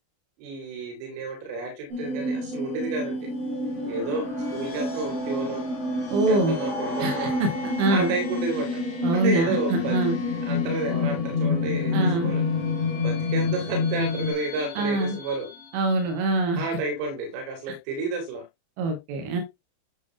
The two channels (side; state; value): left; late; 30 ms